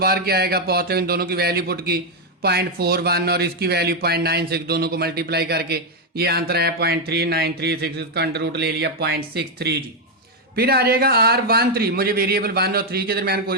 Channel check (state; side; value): normal; both; correlation 0.02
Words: क्या आएगा पॉजिटिव, इन दोनों की वैल्यू पुट की 0.41 और इसकी वैल्यू 0.96, दोनों को मल्टीप्लाई करके ये आंसर है 0.3936, इसका अंडर रूट ले लिया 0.63 जी। फिर आ जाएगा R13, मुझे वेरिएबल 1 और 3 के दरमियान